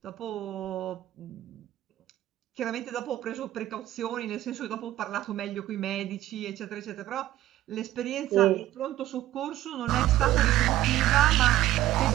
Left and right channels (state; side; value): quieter; left; 14.2 dB